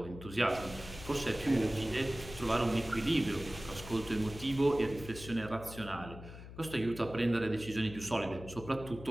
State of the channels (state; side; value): noise; left; hum, 13 dB below the sound